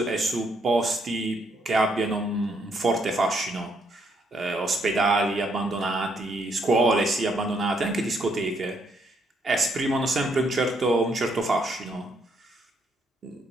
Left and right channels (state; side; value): normal; both; correlation 0.73